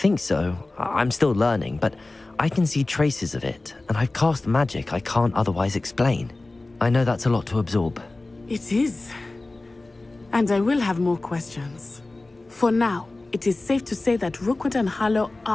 so. I'm still learning, but I can see traces of it, and I've cast magic I can't otherwise explain. I know that's a lot to absorb. It is. And I will have more questions. For now, it is safe to say that Rookwood and Harlow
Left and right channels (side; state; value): right; quieter; 3.0 dB